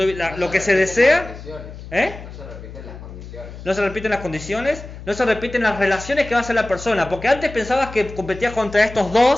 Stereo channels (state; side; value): noise; left; hum, 14 dB below the sound